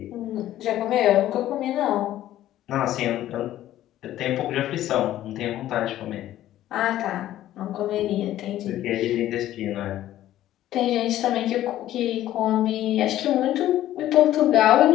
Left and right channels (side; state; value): right; quieter; 13.3 dB